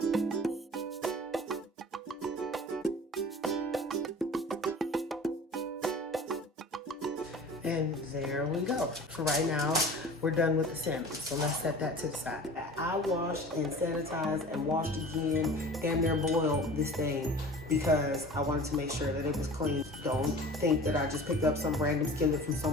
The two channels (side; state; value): both; normal; correlation 0.41